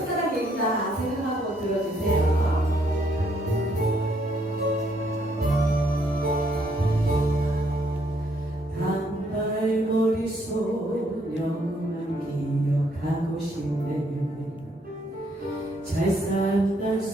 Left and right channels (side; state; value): both; normal; correlation 0.70